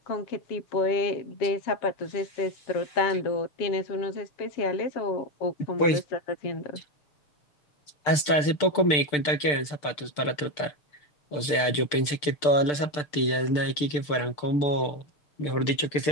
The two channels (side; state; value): right; late; 6.7 ms